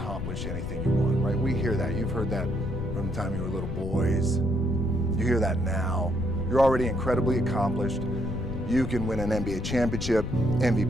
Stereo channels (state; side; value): noise; left; rumble, 5 dB below the sound